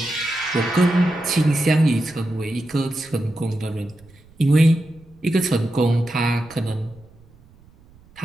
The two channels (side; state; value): right; noise; rumble, 27 dB below the sound